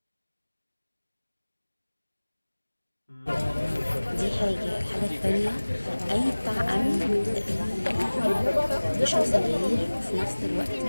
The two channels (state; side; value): inverted; both; correlation -1.00